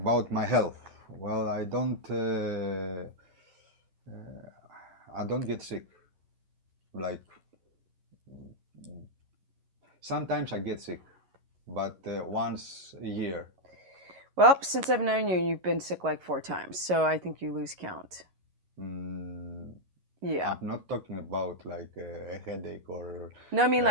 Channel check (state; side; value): late; left; 11 ms